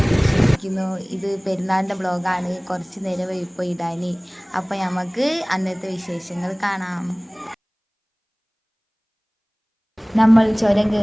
വിശ്വസിക്കുന്നു. ഇത് പെരുന്നാളിൻ്റെ ബ്ലോഗാണ്. കുറച്ച് നേരം ഇപ്പോൾ ഇടാൻ. അപ്പോൾ നമുക്ക് അന്നത്തെ വിശേഷങ്ങൾ കാണാം. നമ്മൾ ചുരം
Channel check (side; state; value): both; identical; correlation 1.00